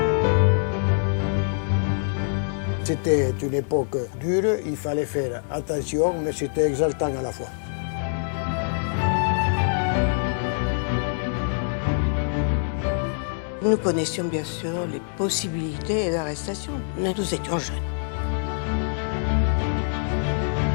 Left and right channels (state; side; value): silent; right; digital silence